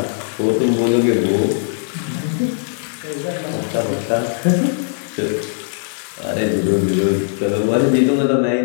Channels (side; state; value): right; silent; 56 dB below the other